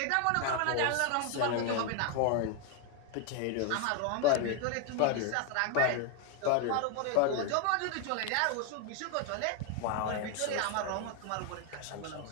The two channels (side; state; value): both; different; correlation 0.01